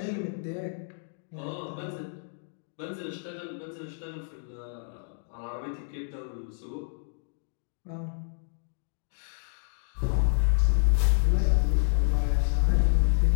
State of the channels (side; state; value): right; silent; digital silence